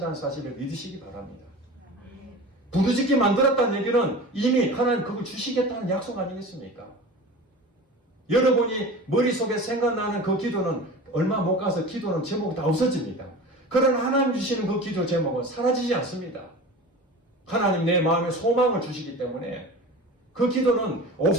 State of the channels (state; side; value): normal; both; correlation 0.35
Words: 사실을 믿으시기 바랍니다. 부르짖게 만들었다는 얘기는 이미 하나님 그걸 주시겠다는 약속 아니겠습니까? 여러분이 머릿속에 생각나는 그 기도는 얼마 못 가서 기도는 제목이 다 없어집니다. 그러나 하나님 주시는 그 기도 제목은 사라지지 않습니다. 하나님 내 마음에 소망을 주시기 때문에 그 기도는